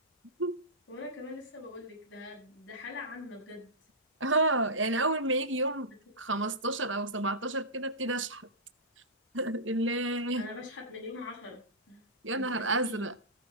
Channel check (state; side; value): normal; both; correlation -0.16